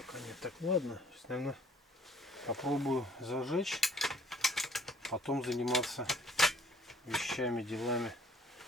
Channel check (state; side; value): normal; both; correlation 0.59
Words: нет. Так, ладно. Сейчас, наверное, попробую зажечь. Потом заниматься вещами, делами.